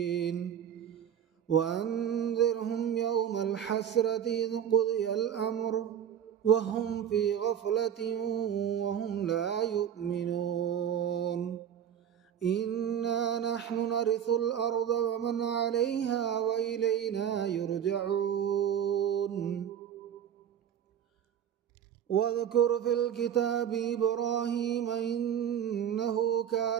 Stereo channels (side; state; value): left; quieter; 9.4 dB